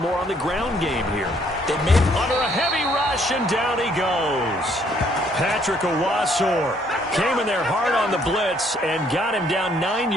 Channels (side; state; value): both; normal; correlation 0.66